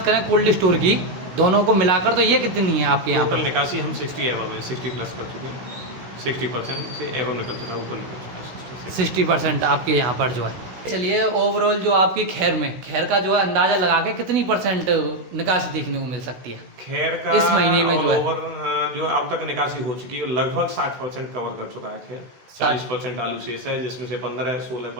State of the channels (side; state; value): left; late; 16 ms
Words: करें कोल्ड स्टोर की, दोनों को मिलाकर तो ये कितनी है आपके यहाँ? टोटल निकासी हम 60 एवं है, 60 प्लस कर चुके हैं। 60% से एवं निकल चुका है, ऊपर निकल चुका है 60% आपके यहाँ पर जो है। चलिए ओवरऑल जो आपकी खैर का जो है अंदाजा लगा के कितनी परसेंट निकासी देखने को मिल सकती है खैर का इस महीने में? ओवर जो अब तक निकासी हो चुकी है लगभग 60% कवर कर चुका है खैर। 40% आलू शेष है, जिसमें से